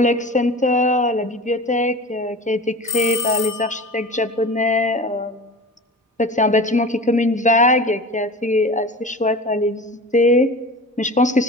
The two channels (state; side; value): normal; both; correlation 0.35